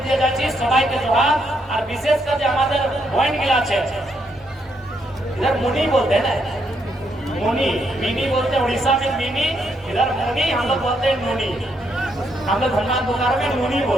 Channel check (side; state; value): both; normal; correlation 0.76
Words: দিয়ে যাচ্ছি, সবাইকে জোহার। আর বিশেষ করে আমাদের পয়েন্ট গুলো আছে, इधर मुनी बोलते हैं ना, मुनी, मिनी बोलते हैं उड़ीसा में मिनी, इधर मुनी, हम लोग बोलते हैं मुनी। हम लोग हनुमान पुकार में मुनी